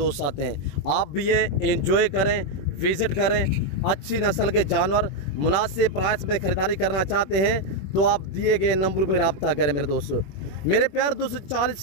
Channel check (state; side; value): late; right; 21 ms